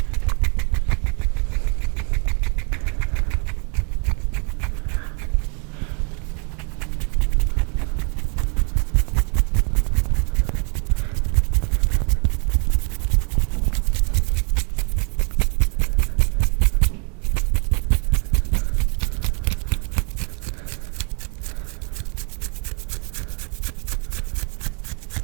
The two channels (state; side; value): quieter; left; 38.5 dB